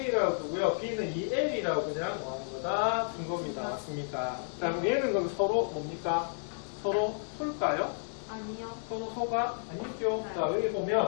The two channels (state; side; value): silent; right; 57 dB below the other